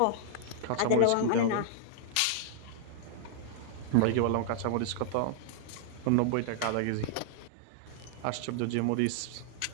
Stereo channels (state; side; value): different; both; correlation -0.01